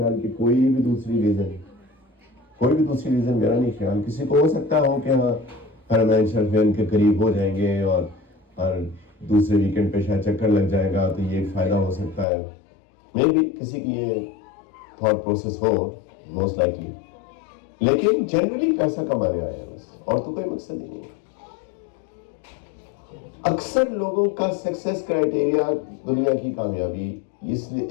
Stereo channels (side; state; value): right; drops out; at 12.2 s